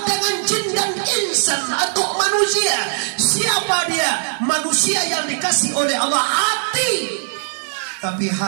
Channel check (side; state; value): left; silent; 61 dB below the other